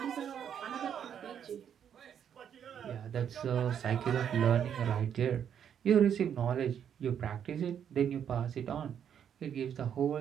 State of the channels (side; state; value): left; quieter; 8.6 dB